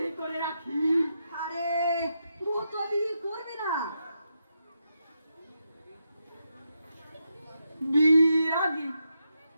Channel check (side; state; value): both; inverted; correlation -0.84